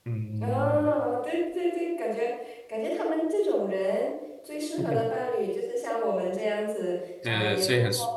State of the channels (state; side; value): identical; both; correlation 1.00